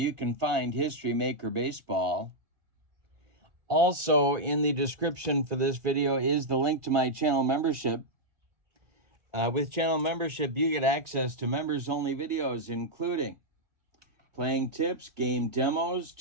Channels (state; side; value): late; left; 2.1 ms